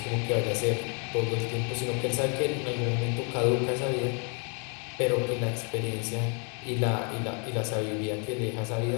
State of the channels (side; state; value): right; quieter; 37.4 dB